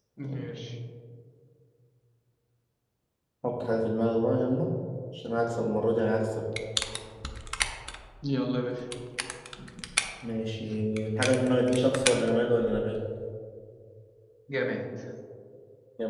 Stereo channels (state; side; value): identical; both; correlation 1.00